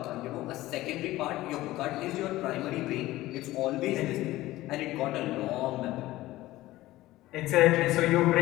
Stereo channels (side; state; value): right; quieter; 16.9 dB